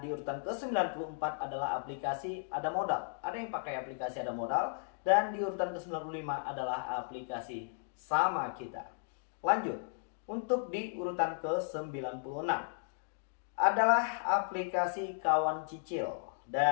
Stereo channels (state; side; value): silent; right; digital silence